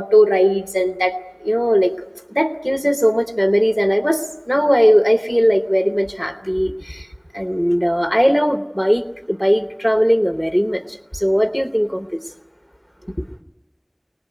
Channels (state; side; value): identical; both; correlation 1.00